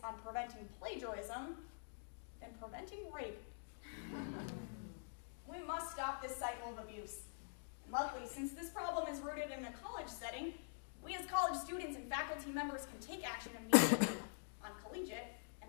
on preventing plagiarism than preventing rape. We must stop this cycle of abuse. And luckily, since this problem is rooted in a college setting, we as college students and faculty members can take action immediately on collegiate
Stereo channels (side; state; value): right; silent; digital silence